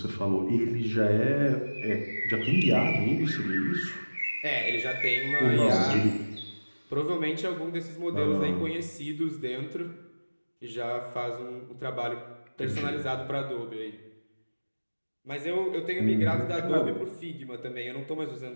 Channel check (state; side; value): inverted; both; correlation -1.00